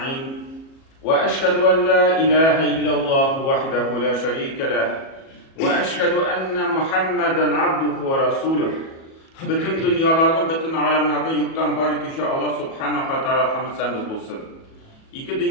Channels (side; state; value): right; late; 37 ms